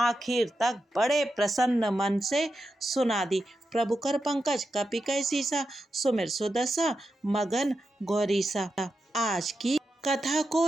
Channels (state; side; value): normal; both; correlation 0.88